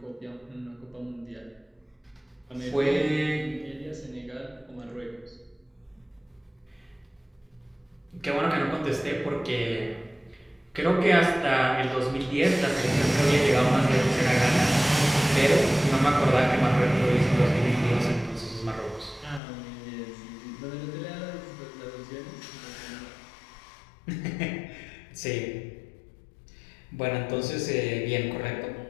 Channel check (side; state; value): right; drops out; at 19.4 s